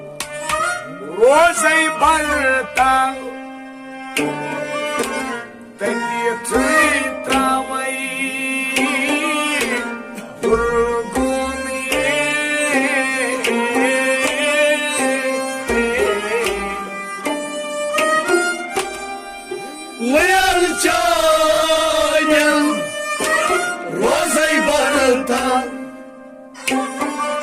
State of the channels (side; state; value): both; identical; correlation 1.00